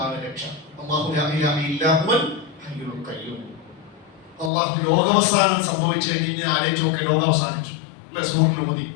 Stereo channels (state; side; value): drops out; right; at 4.5 s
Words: രക്ഷ. അള്ളാഹു ലോകാവസാനം സംഭവിച്ചു കഴിഞ്ഞ് ആലോചിച്ച് നോക്കെ, ലോകം അവസാനിച്ചു അല്ലെ? സൂറിൽ ഊതി